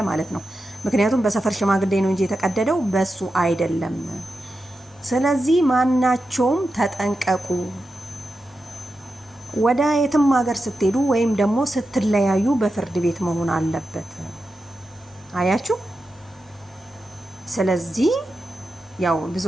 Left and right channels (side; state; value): both; normal; correlation 0.90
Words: ማለት ነው። ምክንያቱም በሰፈር ሽማግሌ ነው እንጂ የተቀደደው በሱ አይደለም። ስለዚህ ማናቸውም ተጠንቀቁ። ወደ የትም ሀገር ስትሄዱ ወይም ደግሞ ስትለያዩ በፍርድ ቤት መሆን አለበት። አያችሁ። ስለዚህ ያው